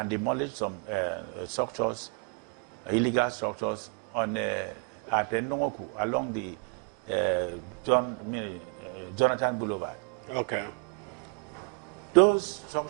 demolished some structures, illegal structures on at Nongoku along the Jonathan Boulevard. Okay. Those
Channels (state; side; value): quieter; left; 33.5 dB